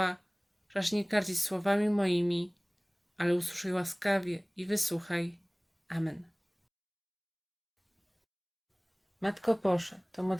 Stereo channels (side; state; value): both; identical; correlation 1.00